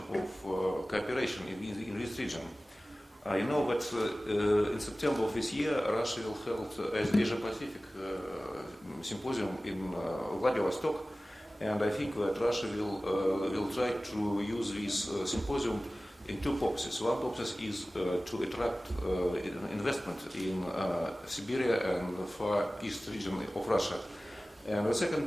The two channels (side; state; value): both; normal; correlation 0.97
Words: cooperation in this region. You know that in September of this year, Russia will hold an Asia-Pacific symposium in Vladivostok, and I think that Russia will try to use this symposium in two purposes. One purpose is to attract investment in Siberia and the Far East region of Russia, and the